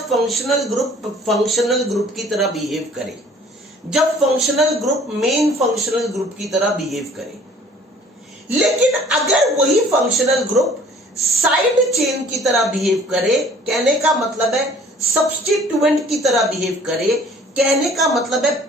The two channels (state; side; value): normal; both; correlation 0.53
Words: फंक्शनल ग्रुप की तरह बिहेव करे, जब functional group main functional group की तरह बिहेव करे। लेकिन अगर वही फंक्शनल ग्रुप साइड चेन की तरह बिहेव करे, कहने का मतलब है सब्स्टिट्यूएंट की तरह बिहेव करे, कहने का मतलब है